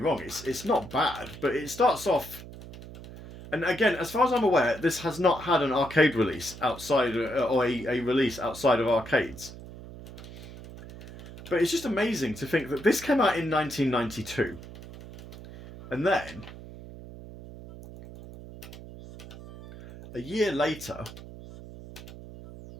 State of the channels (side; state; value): right; noise; hum, 15 dB below the sound